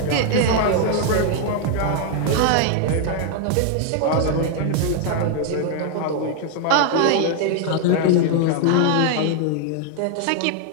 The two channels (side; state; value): both; different; correlation 0.00